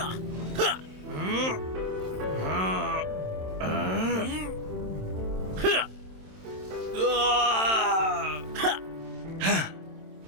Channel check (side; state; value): left; late; 27 ms